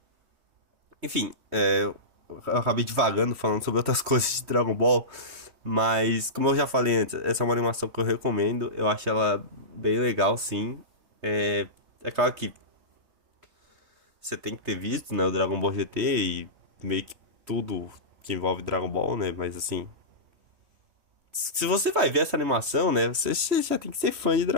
Enfim, eu acabei divagando falando sobre outras coisas de Dragon Ball. Mas, como eu já falei antes, essa é uma animação que eu recomendo. Eu acho ela bem legal, sim. É claro que você tem que ter visto, né, o Dragon Ball GT e meio que tudo que envolve Dragon Ball, né? Mas assim, se você vai ver essa animação, né, você já tem que ser fã de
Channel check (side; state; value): left; late; 3.1 ms